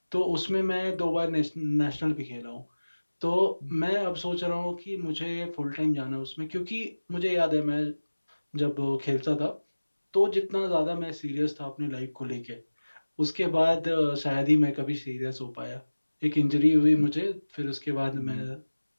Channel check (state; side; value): inverted; both; correlation -1.00